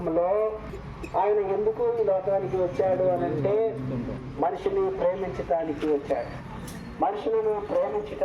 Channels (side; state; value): both; identical; correlation 1.00